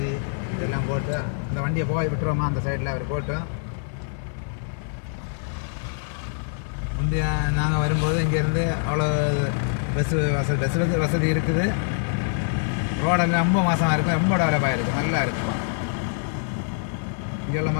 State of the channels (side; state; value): right; silent; digital silence